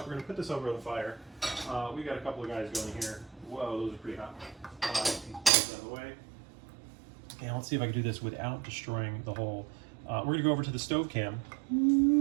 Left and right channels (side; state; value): left; drops out; at 5.5 s